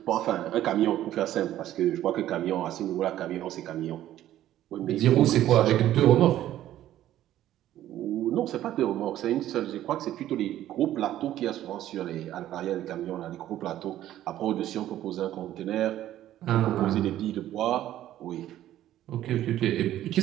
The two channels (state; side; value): quieter; left; 12.9 dB